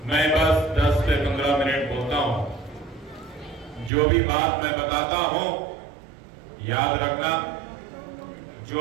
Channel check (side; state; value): left; drops out; at 3.9 s